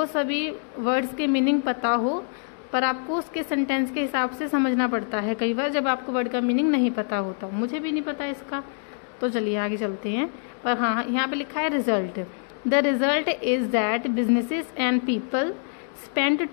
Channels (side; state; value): right; silent; 62 dB below the other